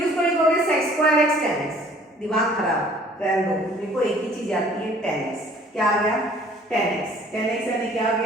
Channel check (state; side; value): normal; both; correlation 0.54